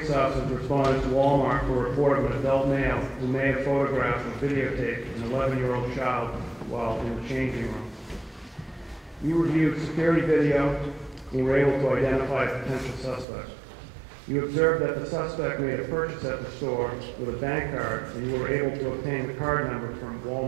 officers responded to Walmart for a report of an adult male who may have photographed and videotaped an 11-year-old child while in the changing room. You reviewed security video and were able to identify a potential suspect. You observed that the suspect made a purchase at the store with a bank card, and you were able to obtain the card number from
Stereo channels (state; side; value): drops out; left; at 13.2 s